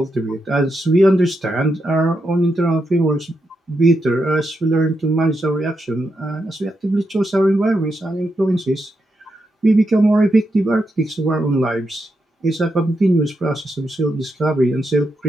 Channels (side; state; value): both; normal; correlation 0.84